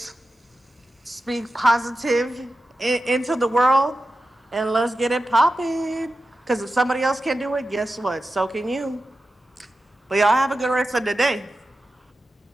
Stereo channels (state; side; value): normal; both; correlation 0.92